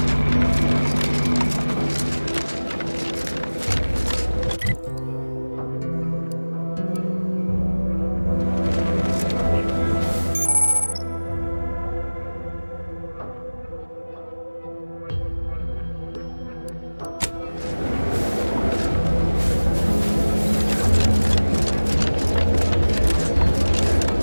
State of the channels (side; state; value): both; inverted; correlation -1.00